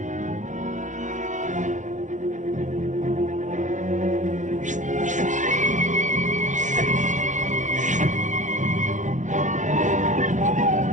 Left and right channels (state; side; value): late; left; 0.36 ms